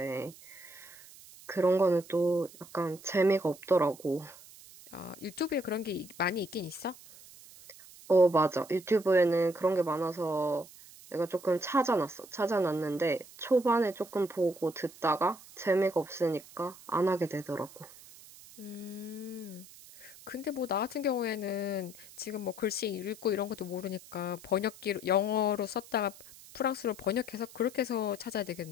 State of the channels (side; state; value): right; noise; hiss, 20 dB below the sound